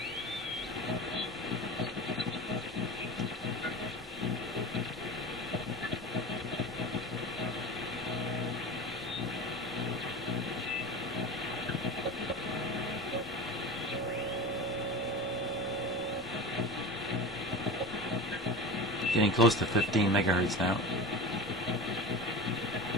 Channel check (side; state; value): both; normal; correlation 0.31